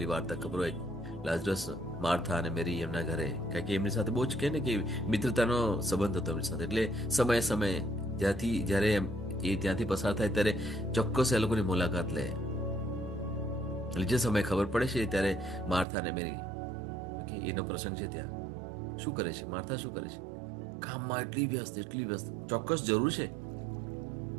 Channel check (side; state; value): left; drops out; at 15.9 s